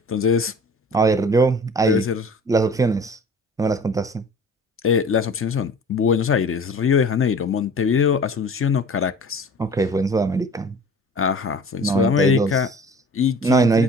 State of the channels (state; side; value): normal; both; correlation 0.44